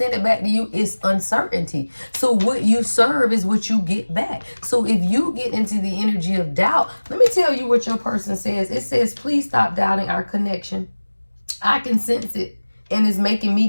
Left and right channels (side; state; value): both; inverted; correlation -1.00